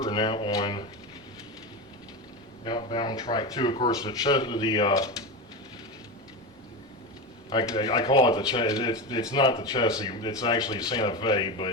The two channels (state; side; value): normal; both; correlation 0.20